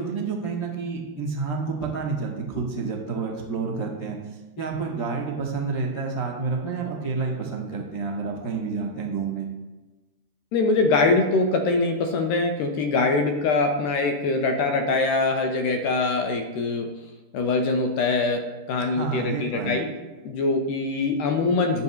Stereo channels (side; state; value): right; late; 13 ms